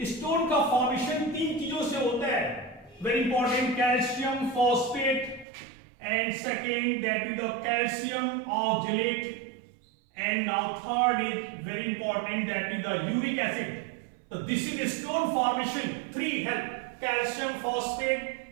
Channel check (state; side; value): drops out; left; at 5.5 s